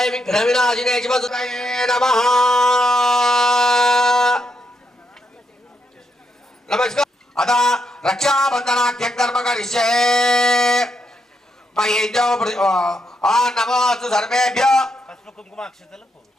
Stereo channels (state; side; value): normal; both; correlation 0.80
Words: विघ्नविनाशिने शिवसुतये नमः. नमस्कार. अतः रक्षाबंधनाख्यं कर्म करिष्ये. नमोस्तु सर्वेभ्यो.